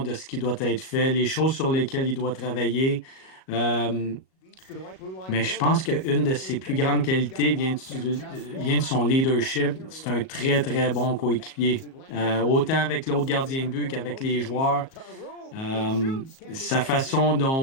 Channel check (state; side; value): late; right; 37 ms